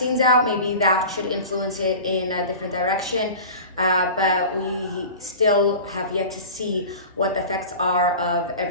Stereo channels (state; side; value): inverted; both; correlation -0.36